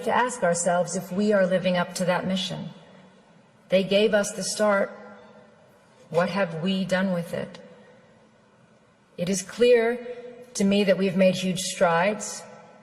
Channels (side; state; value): both; identical; correlation 1.00